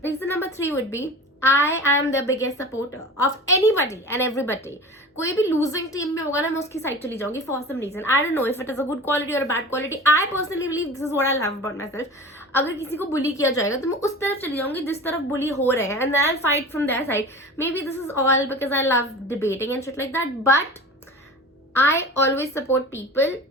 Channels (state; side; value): normal; both; correlation 0.36